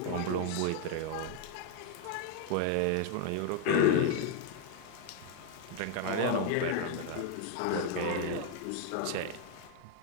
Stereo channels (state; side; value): different; both; correlation 0.01